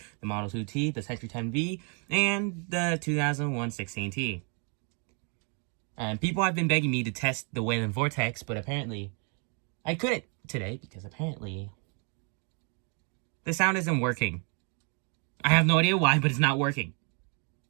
the Model 2T, the Sentry 10V, and the 2001 16T. And people have been begging me to test the Wayland Vortex, but apparently I couldn't today because apparently the sound isn't working. I have no idea why, but it's not working.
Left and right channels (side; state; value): left; quieter; 38.4 dB